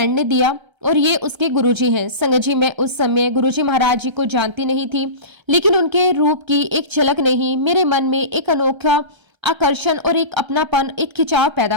ने दिया और ये उसके गुरुजी हैं। संगत जी, मैं उस समय गुरुजी महाराज जी को जानती नहीं थी, लेकिन उनके रूप की एक झलक ने ही मेरे मन में एक अनोखा आकर्षण और एक अपनापन, एक खिंचाव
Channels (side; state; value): left; late; 1.3 ms